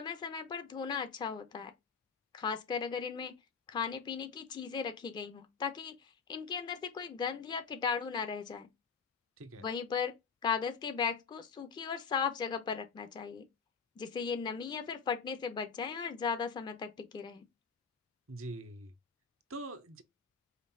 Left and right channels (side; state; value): right; quieter; 5.8 dB